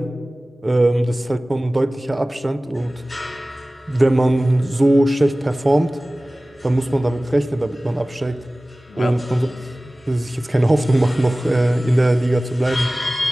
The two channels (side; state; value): both; normal; correlation 0.98